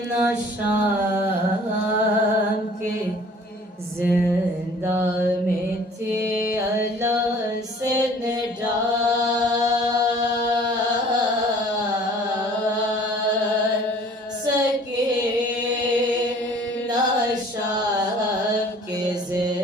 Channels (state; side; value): normal; both; correlation 0.51